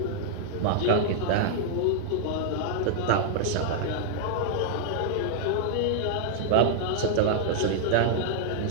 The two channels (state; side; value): different; both; correlation -0.01